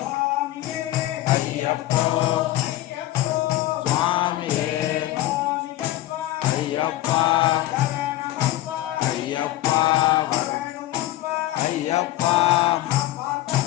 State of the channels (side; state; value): right; quieter; 15.3 dB